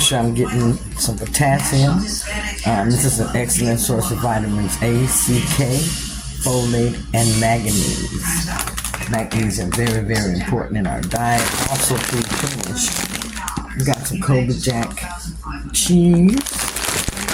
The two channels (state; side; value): identical; both; correlation 1.00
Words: sure I'm getting some potassium. This is an excellent source of vitamins A, C, K, folate, and manganese. Magnesium, very, very important in our diet. Also pre-finished. We got some Cobra Jack cheese.